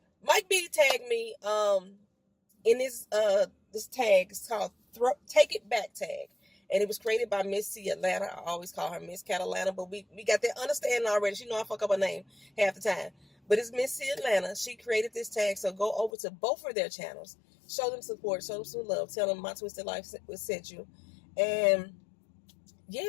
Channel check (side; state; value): right; drops out; at 16.1 s